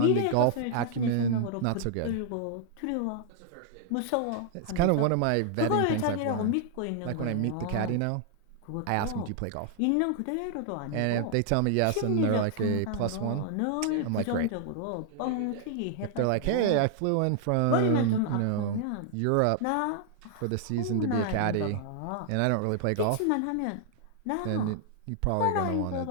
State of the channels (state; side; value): different; both; correlation 0.00